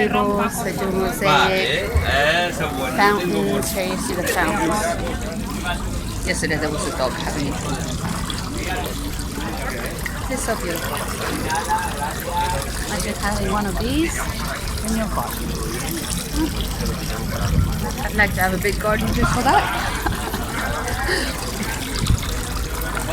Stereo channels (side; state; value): both; identical; correlation 1.00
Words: rompa. tables. They do mosaic fountains. Here you see the fountains. Yesterday there was a dog having it. It's so beautiful. Imagine having one of these in your garden. I'd like to have a big garden just for that.